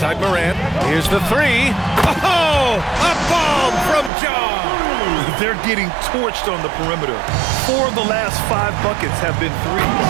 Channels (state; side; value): drops out; left; at 4.1 s